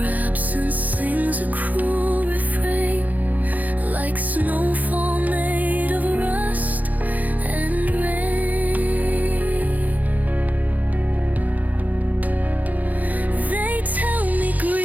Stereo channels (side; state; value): left; late; 0.080 ms